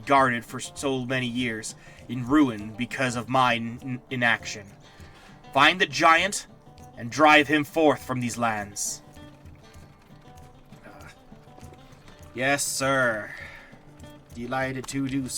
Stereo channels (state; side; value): identical; both; correlation 1.00